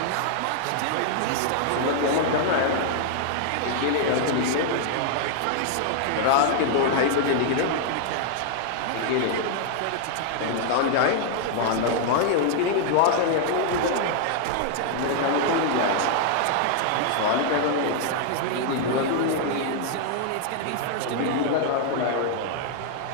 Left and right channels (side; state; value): both; different; correlation 0.00